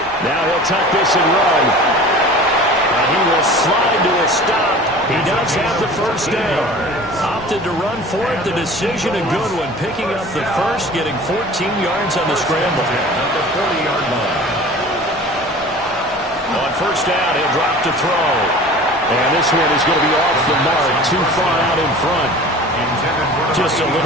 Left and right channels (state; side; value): noise; left; rumble, 26 dB below the sound